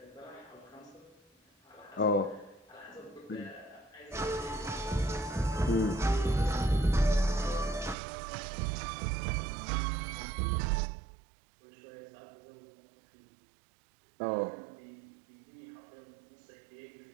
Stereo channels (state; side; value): drops out; left; at 8.0 s